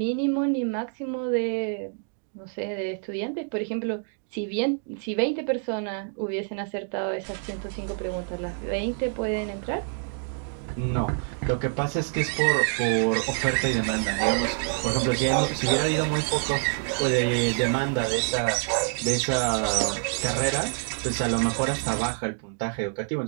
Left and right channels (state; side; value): silent; left; 60 dB below the other